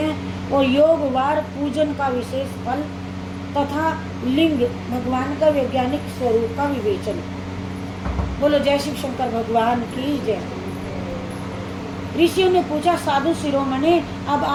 और योग वार पूजन का विशेष फल तथा लिंग भगवान का वैज्ञानिक स्वरूप का विवेचन। बोलो जय शिव शंकर भगवान की जय। ऋषियों ने पूछा, साधु शिरोमणि, अब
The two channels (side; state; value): both; identical; correlation 1.00